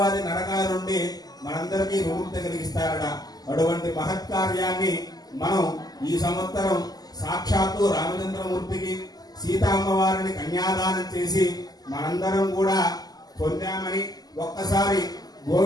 నరకాల నుండి మనందరికీ విముక్తి కలిగిస్తారట. అటువంటి మహత్కార్యాన్ని మనం ఈ సంవత్సరం సాక్షాత్తు రామచంద్రమూర్తికి సీతామ్మవారిని కన్యాదానం చేసి మనందరం కూడా పొందామని ఒక్కసారి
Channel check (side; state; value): right; late; 0.19 ms